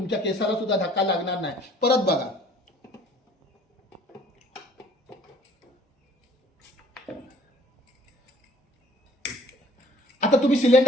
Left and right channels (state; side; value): normal; both; correlation 0.55